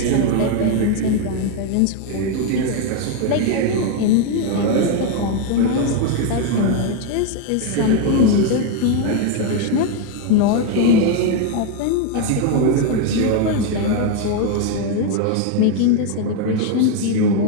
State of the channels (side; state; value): both; different; correlation 0.01